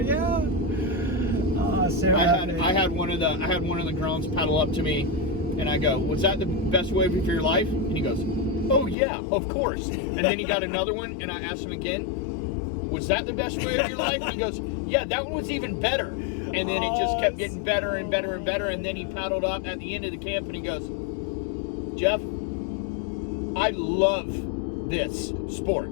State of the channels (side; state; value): right; drops out; at 9.0 s